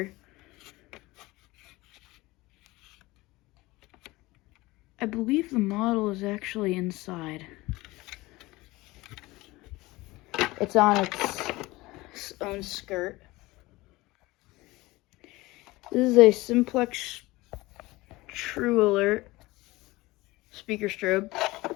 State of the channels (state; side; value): quieter; right; 20.5 dB